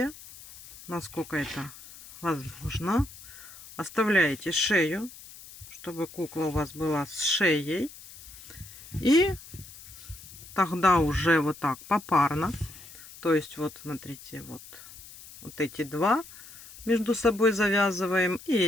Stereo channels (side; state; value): left; noise; hiss, 18 dB below the sound